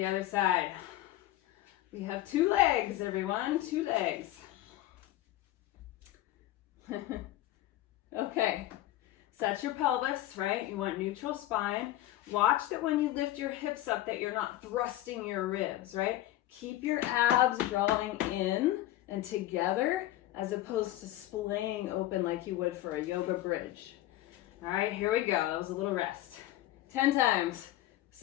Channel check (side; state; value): right; quieter; 14.7 dB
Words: other side. We have 2 legs, everyone, 2 legs. Okay, set your pelvis, right? You want neutral spine. Watch that when you lift your hips up that you're not thrusting your ribs, right? Keep your abs drawing in and together as opposed to splaying open like you would for a yoga bridge. All right, here we go. That was a little rest. 10 times.